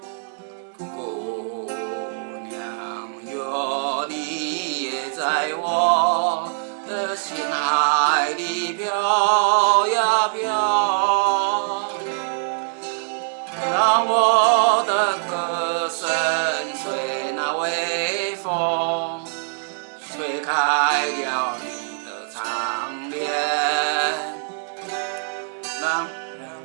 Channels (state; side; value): silent; left; digital silence